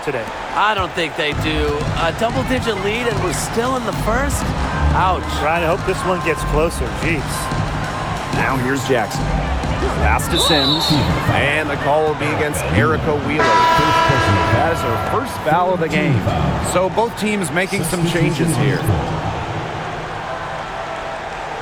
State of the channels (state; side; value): identical; both; correlation 1.00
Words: today. I don't think they do. A double-digit lead and we're still in the first? Ouch. Trying to hope this one gets closer. Jeez. Now here's Jackson. Pass to Sims, and the call will be against Erica Wheeler. That is her first foul of the game. So both teams making some changes here.